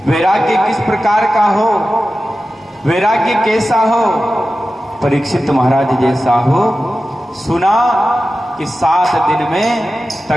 वैराग्य किस प्रकार का हो, वैराग्य कैसा हो? परीक्षित महाराज जैसा हो। सुना कि 7 दिन में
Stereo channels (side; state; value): both; normal; correlation 0.94